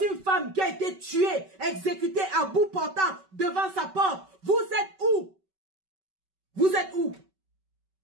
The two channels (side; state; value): left; late; 5.2 ms